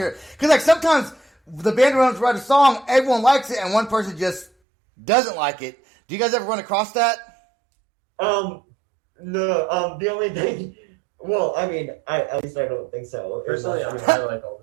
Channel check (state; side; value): drops out; left; at 4.5 s